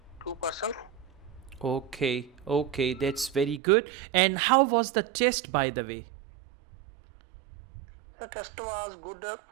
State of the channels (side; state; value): left; drops out; at 3.6 s